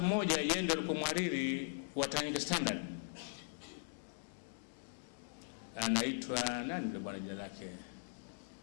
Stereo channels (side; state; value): right; silent; digital silence